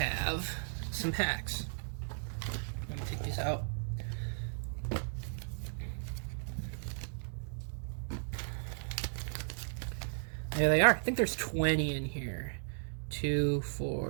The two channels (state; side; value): silent; left; digital silence